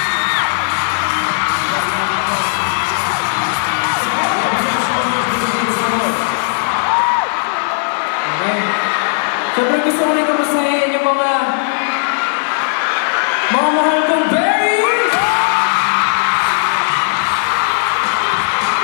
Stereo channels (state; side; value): silent; right; 59 dB below the other